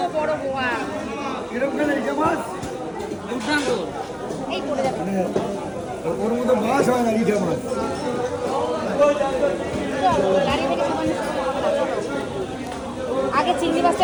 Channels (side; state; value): both; identical; correlation 1.00